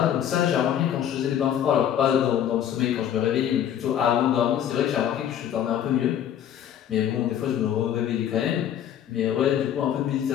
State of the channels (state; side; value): quieter; right; 10.0 dB